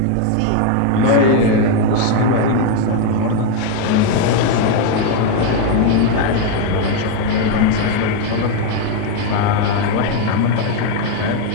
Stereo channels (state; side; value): different; both; correlation 0.01